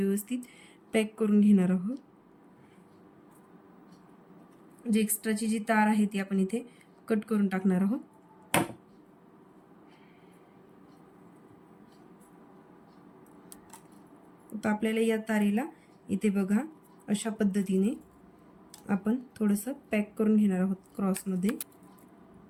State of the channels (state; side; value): identical; both; correlation 1.00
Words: पॅक करून घेणार आहोत. जी एक्स्ट्राची जी तार आहे ती आपण इथे कट करून टाकणार आहोत. आता आपल्याला या तारेला इथे बघा अशा पद्धतीने आपण थोडंसं पॅक करून घेणार आहोत क्रॉसमध्ये.